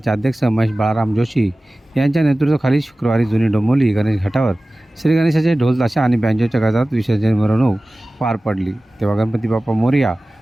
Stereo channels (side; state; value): both; normal; correlation 0.97